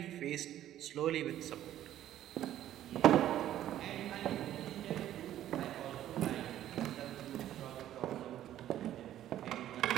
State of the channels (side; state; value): left; quieter; 12.3 dB